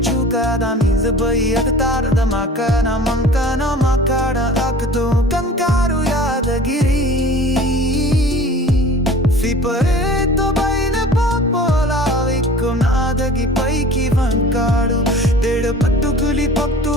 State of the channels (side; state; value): both; normal; correlation 0.44